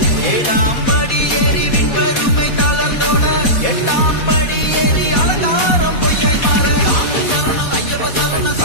ஏழாம் படி ஏறி விண்பெருமை தளர்ந்தோட, எட்டாம் படி ஏறி அலங்காரம் பொய்யை மாற. சாமி சரணம் ஐயப்ப சரணம்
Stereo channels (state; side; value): late; right; 4.2 ms